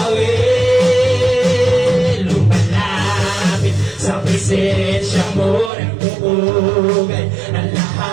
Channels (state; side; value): drops out; left; at 5.7 s